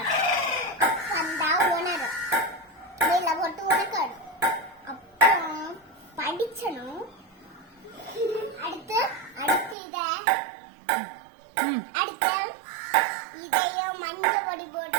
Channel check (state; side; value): drops out; left; at 9.8 s